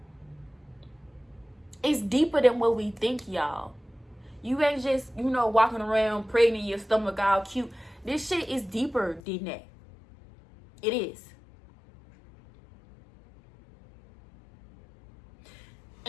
It's deeper than what we think, y'all. You ain't just, walking around pregnant, your stomach all cute. This shit is deeper than that. It is.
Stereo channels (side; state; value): right; drops out; at 9.2 s